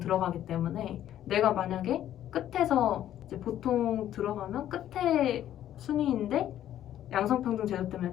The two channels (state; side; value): quieter; right; 11.7 dB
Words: 때문에 내가 만약에 끝에서 이제 보통 들어가면 끝에 순위인데 양성평등 제도 때문에